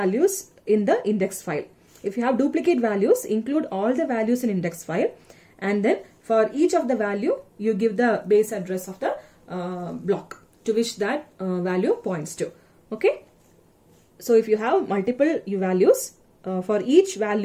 in the index file. If you have duplicate values, include all the values in index file, and then for each of the value you give the base address of the block to which that value points to, okay. So if you have multiple values, for each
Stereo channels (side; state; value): both; identical; correlation 1.00